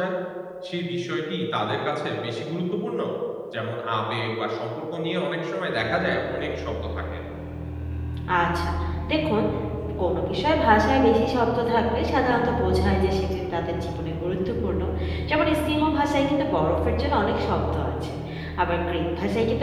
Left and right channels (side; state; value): both; identical; correlation 1.00